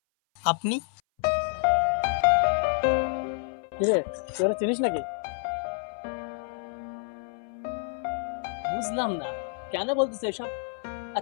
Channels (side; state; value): right; silent; 57 dB below the other